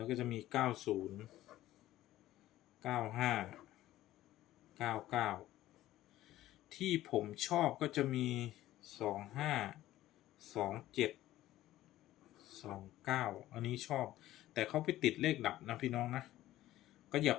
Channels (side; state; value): right; quieter; 14.8 dB